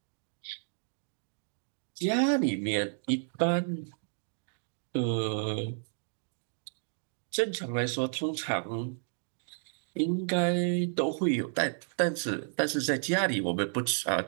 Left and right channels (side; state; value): left; silent; digital silence